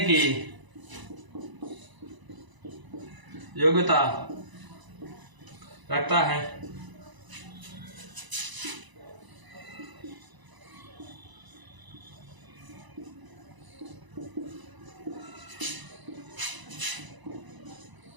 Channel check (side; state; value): left; late; 1.0 ms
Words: की योग्यता रखता है।